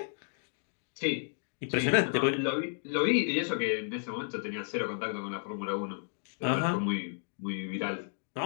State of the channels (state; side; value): silent; right; 56 dB below the other